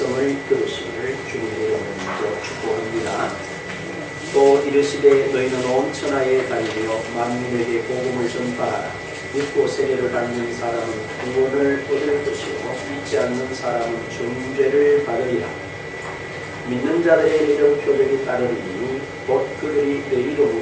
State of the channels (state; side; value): identical; both; correlation 1.00